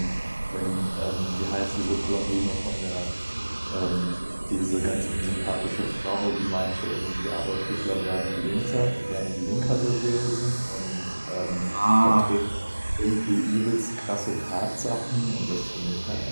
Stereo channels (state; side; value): inverted; both; correlation -1.00